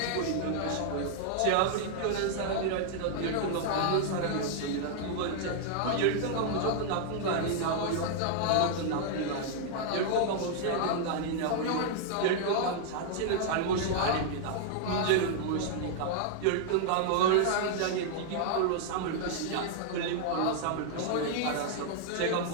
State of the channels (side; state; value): both; different; correlation 0.00